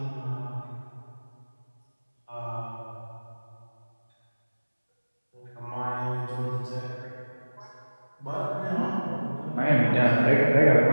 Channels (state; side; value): inverted; both; correlation -1.00